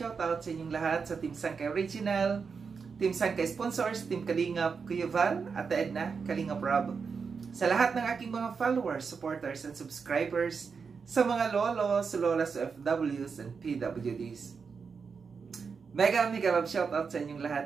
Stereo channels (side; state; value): left; quieter; 5.5 dB